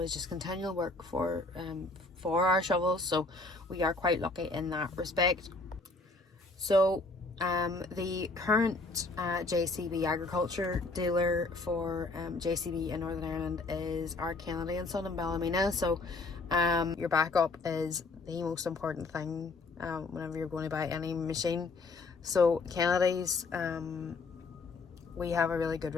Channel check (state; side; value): quieter; right; 3.5 dB